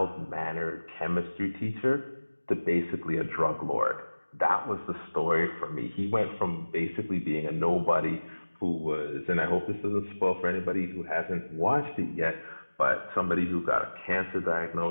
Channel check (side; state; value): both; inverted; correlation -1.00